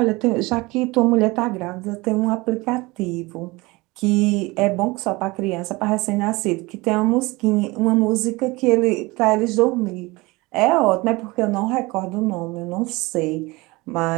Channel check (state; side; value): quieter; left; 22.9 dB